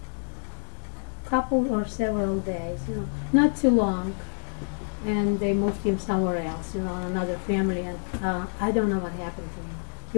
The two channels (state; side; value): silent; right; digital silence